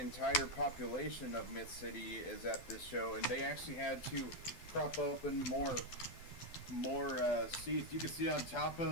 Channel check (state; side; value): late; right; 12 ms